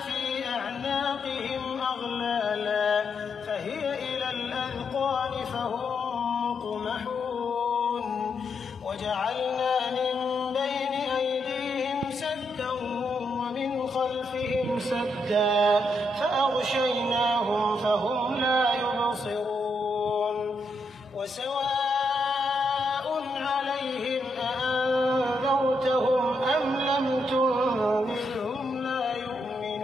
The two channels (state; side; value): normal; both; correlation 0.80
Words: أعناقهم أغلالا فهي إلى الأذقان فهم مقمحون وجعلنا من بين أيديهم سدا ومن خلفهم سدا فأغشيناهم فهم لا يبصرون وسواء عليهم أأنذرتهم أم لم تنذرهم لا